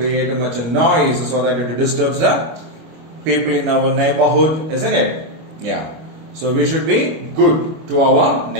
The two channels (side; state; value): left; late; 25 ms